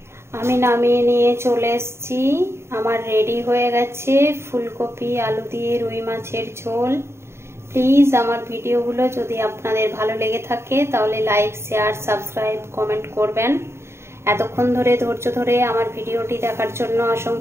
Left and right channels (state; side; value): late; left; 0.13 ms